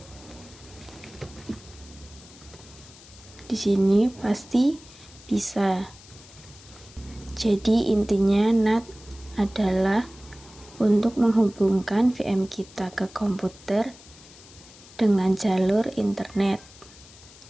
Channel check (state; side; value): noise; left; hiss, 21 dB below the sound